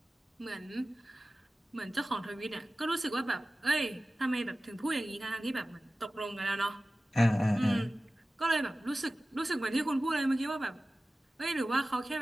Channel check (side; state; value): both; normal; correlation 0.96